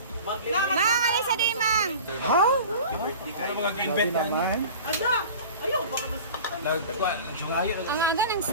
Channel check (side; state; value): both; inverted; correlation -0.39